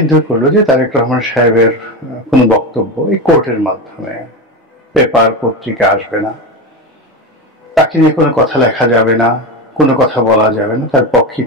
করলো যে তারেক রহমান সাহেবের কোনো বক্তব্য এই কোর্টের মাধ্যমে, পেপার পত্রিকা আসবে না, তাকে নিয়ে কোনো কথা লেখা যাবে না, কোনো কথা বলা যাবে না, তার পক্ষে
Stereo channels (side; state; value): both; normal; correlation 0.19